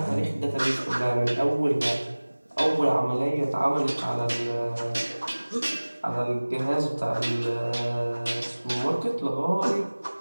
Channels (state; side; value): inverted; both; correlation -1.00